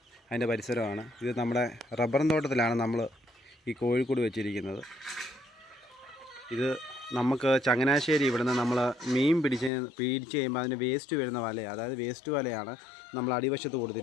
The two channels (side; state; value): right; drops out; at 9.7 s